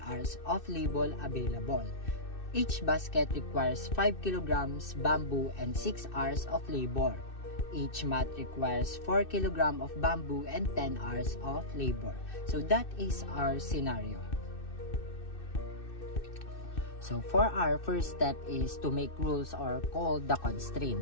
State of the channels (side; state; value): right; late; 2.6 ms